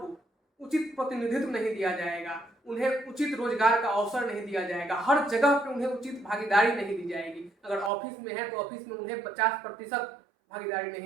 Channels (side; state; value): left; drops out; at 7.9 s